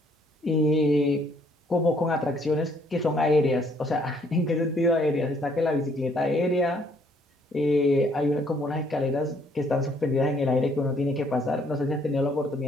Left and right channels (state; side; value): normal; both; correlation 0.66